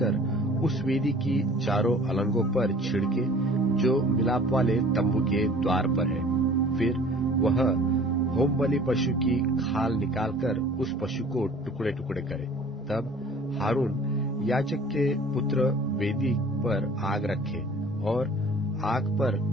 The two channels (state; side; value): normal; both; correlation 0.48